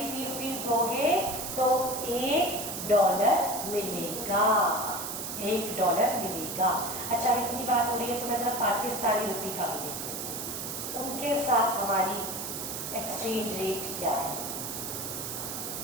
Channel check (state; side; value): noise; right; hiss, 5 dB below the sound